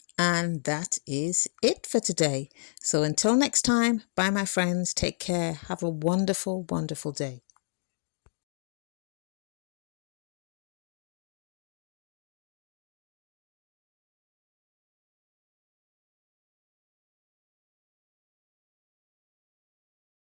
And that is it for today. So until next time, bye my friends, take care, have a wonderful day.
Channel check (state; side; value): silent; right; digital silence